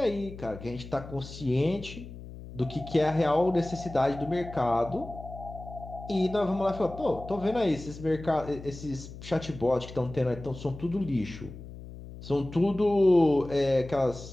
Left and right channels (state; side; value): noise; left; hum, 14 dB below the sound